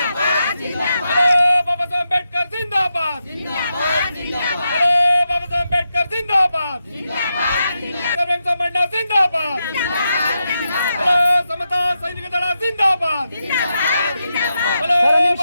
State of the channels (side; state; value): both; inverted; correlation -0.86